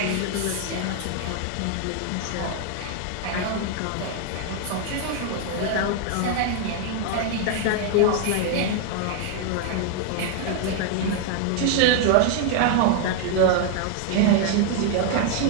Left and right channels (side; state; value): both; different; correlation 0.00